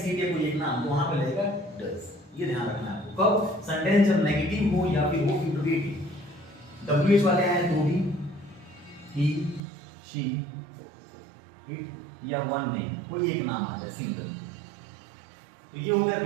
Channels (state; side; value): drops out; left; at 9.6 s